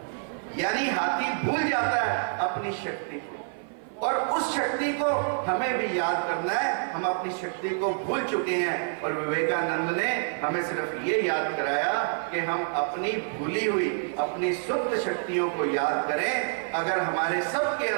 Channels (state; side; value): silent; left; 55 dB below the other